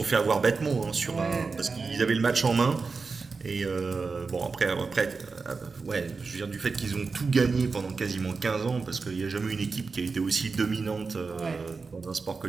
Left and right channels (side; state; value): left; quieter; 4.5 dB